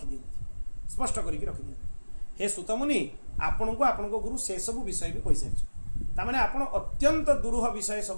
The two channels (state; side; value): inverted; both; correlation -1.00